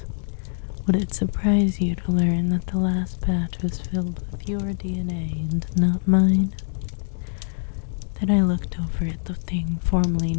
Would it surprise you to learn that the last batch was filled with your DNA and not mine? Then I looked over at the thing formerly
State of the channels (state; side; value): silent; right; digital silence